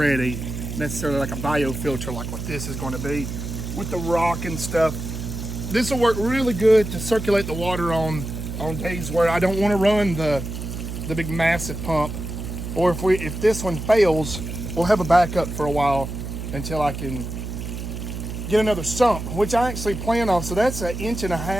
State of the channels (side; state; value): right; noise; hum, 7 dB below the sound